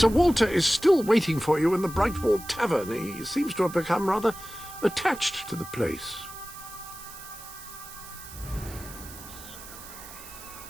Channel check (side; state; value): right; noise; hiss, 15 dB below the sound